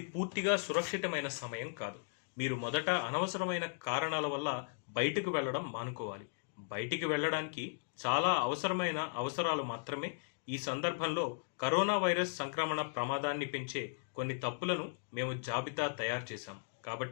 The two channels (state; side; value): silent; right; digital silence